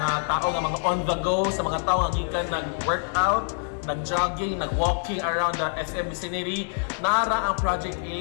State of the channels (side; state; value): right; silent; 61 dB below the other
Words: tao nga mga on the go, sa mga tao nga gikan nag-workout, nag-jogging, nag-walking around the SM vicinity, nara ang Project